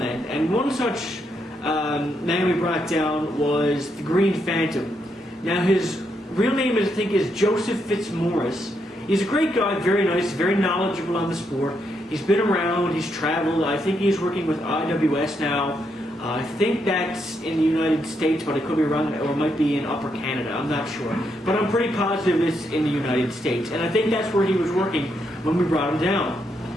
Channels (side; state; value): both; normal; correlation 0.79